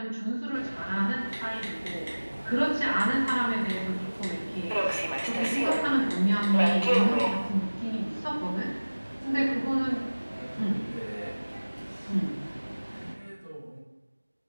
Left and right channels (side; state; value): both; inverted; correlation -1.00